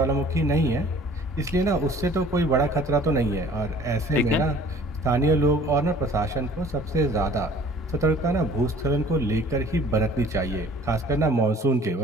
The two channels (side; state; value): both; normal; correlation 0.51